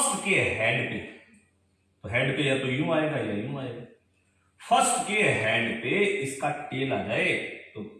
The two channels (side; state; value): both; identical; correlation 1.00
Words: के हेड पे, तो हेड पे या तो यूं आएगा या यूं आएगा। फर्स्ट के हेड पे इसका टेल आ जाए तो